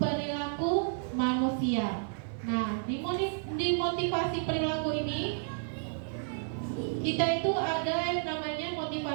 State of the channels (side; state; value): left; silent; 57 dB below the other